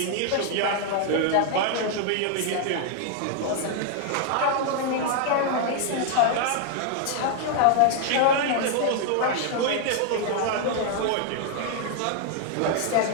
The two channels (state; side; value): different; both; correlation 0.00